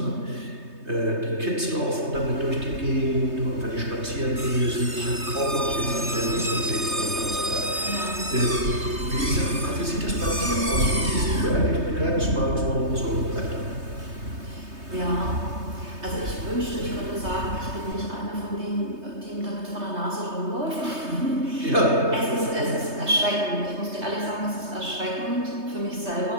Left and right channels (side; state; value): left; late; 3.2 ms